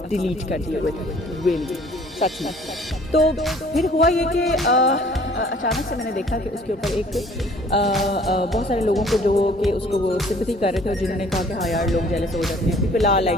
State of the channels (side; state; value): both; normal; correlation 0.54